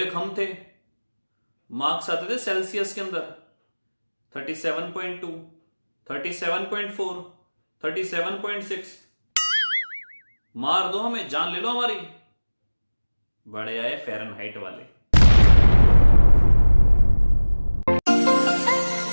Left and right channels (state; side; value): inverted; both; correlation -1.00